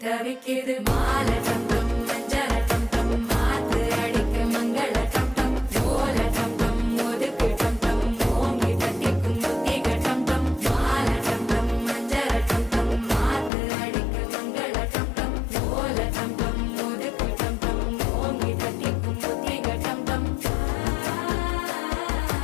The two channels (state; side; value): drops out; right; at 13.5 s